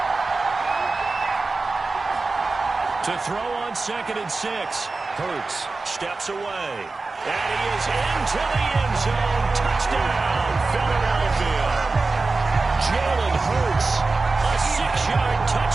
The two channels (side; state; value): left; quieter; 3.7 dB